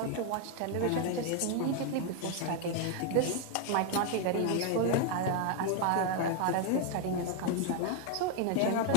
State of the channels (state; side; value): different; both; correlation 0.00